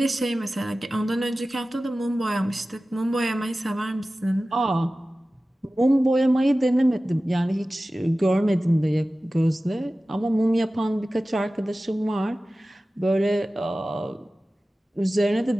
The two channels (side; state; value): both; normal; correlation 0.96